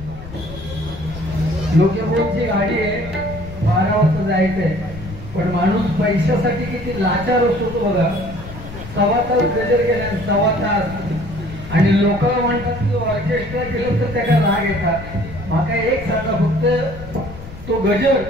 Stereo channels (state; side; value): noise; left; rumble, 13 dB below the sound